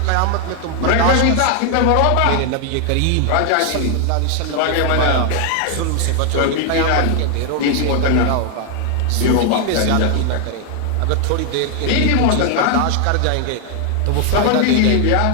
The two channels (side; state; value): both; different; correlation 0.00